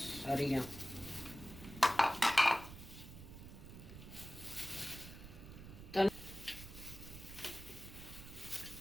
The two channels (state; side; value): noise; right; rumble, 13 dB below the sound